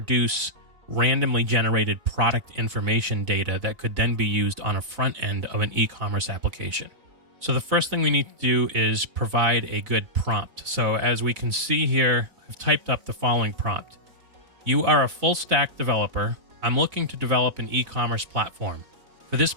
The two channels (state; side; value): late; left; 4.0 ms